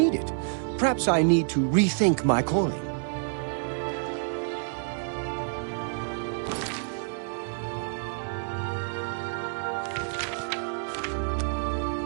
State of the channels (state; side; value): silent; left; 59 dB below the other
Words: it? Perhaps I need to rethink my calling.